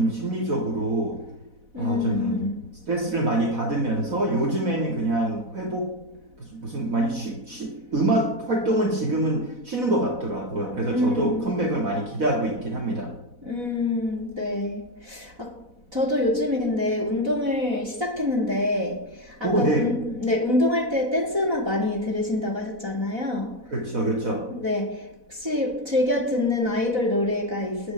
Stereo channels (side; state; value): left; late; 4.1 ms